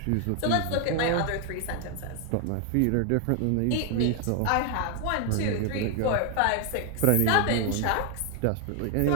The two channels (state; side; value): different; both; correlation 0.00